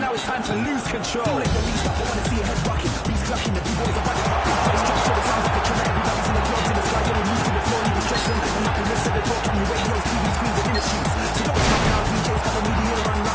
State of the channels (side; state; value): both; identical; correlation 1.00